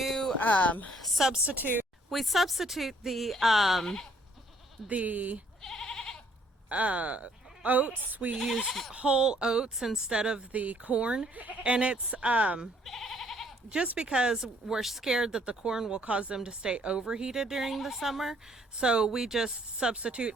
substitute the oats. We use whole oats instead of the corn, and it's just because we're scared that the corn will cause them to stay overheated during the summer. So we just substitute.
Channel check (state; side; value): normal; both; correlation 0.63